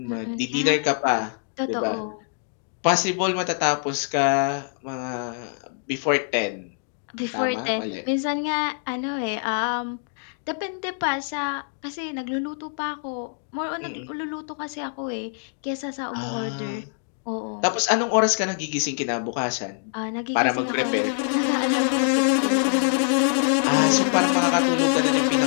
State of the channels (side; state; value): right; silent; 62 dB below the other